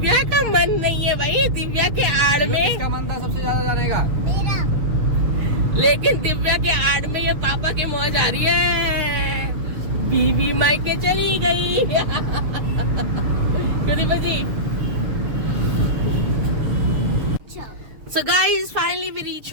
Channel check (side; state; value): left; late; 6.7 ms